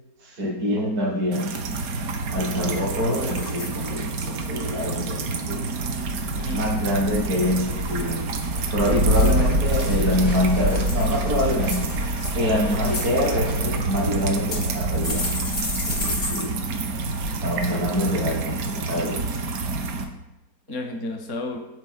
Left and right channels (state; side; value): late; left; 4.3 ms